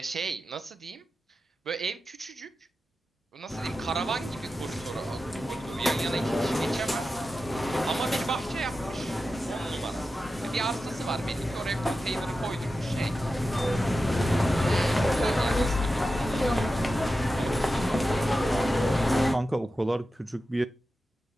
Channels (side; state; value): both; normal; correlation 0.92